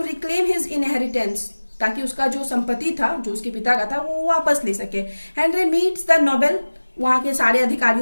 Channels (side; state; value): both; inverted; correlation -1.00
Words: रिक्लेम हिज इनहेरिटेंस, ताकि उसका जो संपत्ति था जो उसके पिता का था वो वापस ले सके। हेनरी मीट्स द नोबेल, वहाँ के सारे